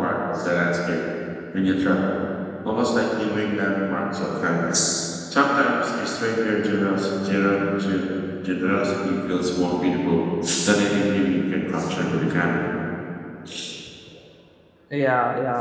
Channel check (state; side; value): identical; both; correlation 1.00